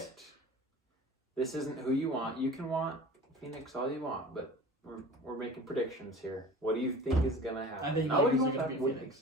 it. This isn't who you want. You can want Phoenix all you want, but we're making predictions here. What do you think is gonna happen? I think Not what do you Lakers are want gonna to beat happen. Phoenix.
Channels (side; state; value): both; normal; correlation 0.40